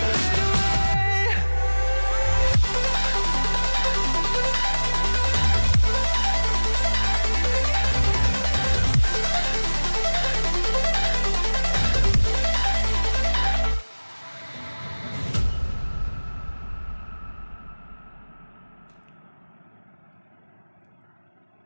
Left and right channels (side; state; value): both; inverted; correlation -1.00